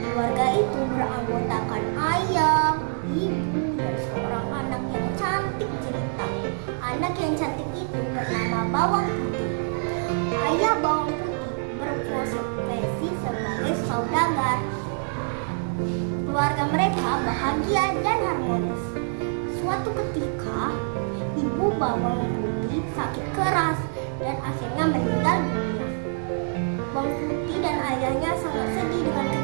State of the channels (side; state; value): left; silent; 61 dB below the other